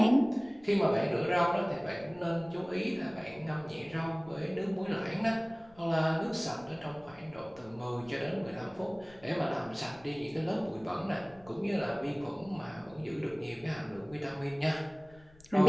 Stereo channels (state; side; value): noise; left; rumble, 26 dB below the sound